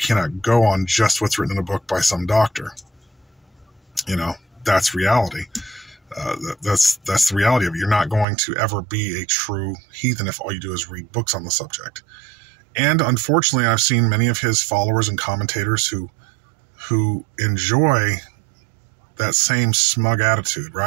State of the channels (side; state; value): left; drops out; at 8.2 s